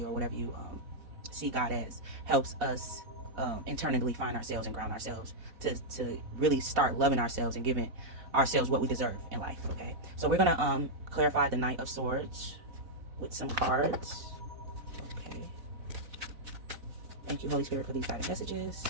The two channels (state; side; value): late; left; 4.0 ms